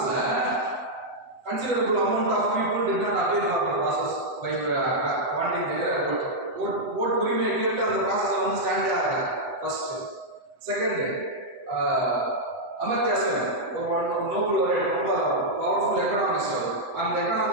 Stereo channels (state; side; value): late; left; 8.0 ms